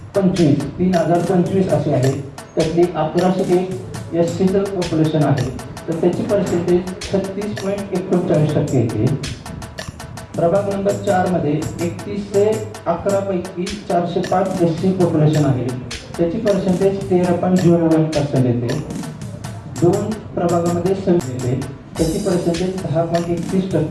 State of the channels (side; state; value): both; identical; correlation 1.00